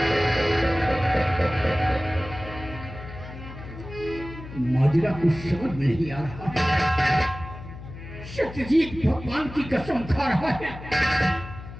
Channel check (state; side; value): noise; left; hum, 13 dB below the sound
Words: माजरा कुछ समझ में नहीं आ रहा। सत्यजीत भगवान की कसम खा रहा है